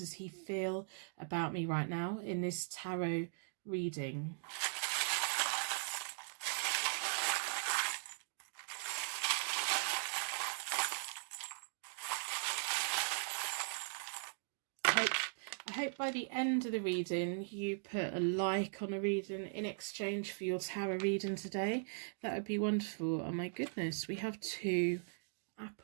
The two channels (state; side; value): silent; left; digital silence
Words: he feel about me right now in this tarot reading. I hope by the end of the reading you put a like on a reading in exchange for your tarot reading today. That would be wonderful. Oh my goodness, we have 2